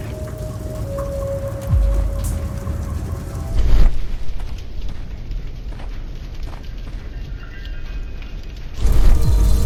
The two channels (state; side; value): identical; both; correlation 1.00